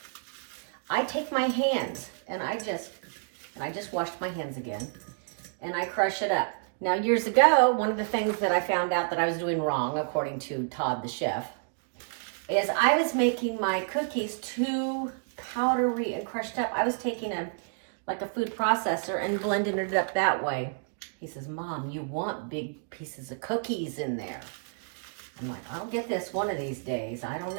I take my hands, and I just washed my hands again, and I crush it up. Now years ago, one of the things that I found out that I was doing wrong, according to Todd the chef, is I was making my cookies too powdery and crushed up. I was taking a food processor and blending it up that way. He says, Mom, you want big pieces of cookies in there. I'm like, I'll get this one of these days. I don't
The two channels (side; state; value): left; silent; digital silence